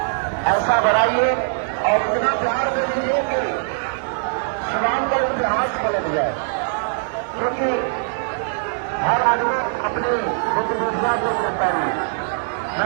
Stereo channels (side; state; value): left; silent; 65 dB below the other